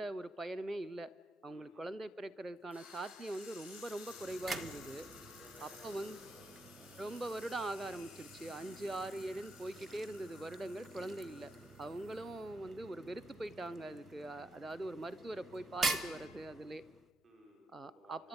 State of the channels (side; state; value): both; normal; correlation 0.82